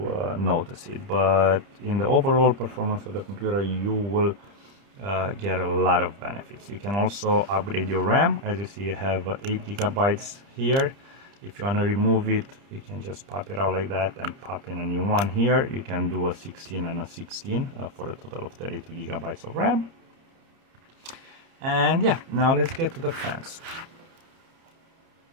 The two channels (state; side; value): late; left; 30 ms